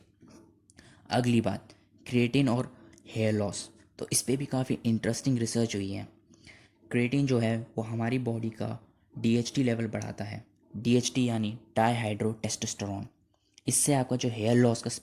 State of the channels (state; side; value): identical; both; correlation 1.00